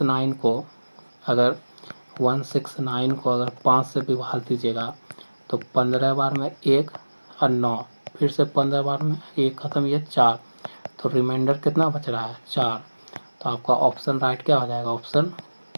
को अगर 5 से विभाग दीजिएगा तो 15 बार में 1 और 9, फिर से 15 बार में 1 ख़त्म, ये 4, तो रिमाइंडर कितना बच रहा है 4। तो आपका ऑप्शन राइट क्या हो जाएगा, ऑप्शन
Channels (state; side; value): inverted; both; correlation -1.00